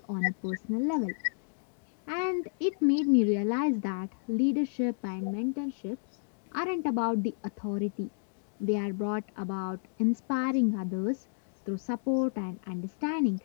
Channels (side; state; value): right; silent; digital silence